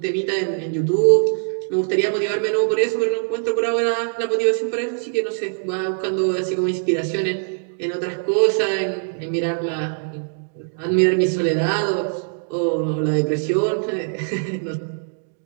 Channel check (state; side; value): silent; left; digital silence